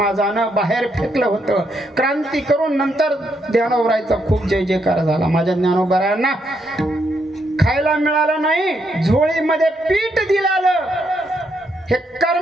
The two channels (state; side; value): normal; both; correlation 0.77